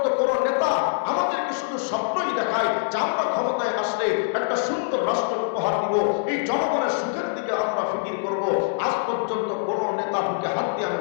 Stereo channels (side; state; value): right; silent; digital silence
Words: কোন নেতা আমাদেরকে শুধু স্বপ্নই দেখায় যে আমরা ক্ষমতায় আসলে একটা সুন্দর রাষ্ট্র উপহার দিব, এই জনগণের সুখের দিকে আমরা ফিকির করব। আজ পর্যন্ত কোন নেতা বুকে হাত দিয়ে আমি